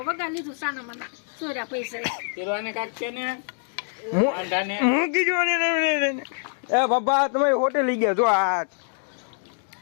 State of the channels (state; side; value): silent; right; digital silence